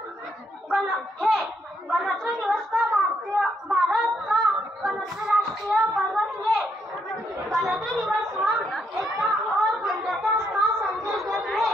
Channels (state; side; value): normal; both; correlation 0.75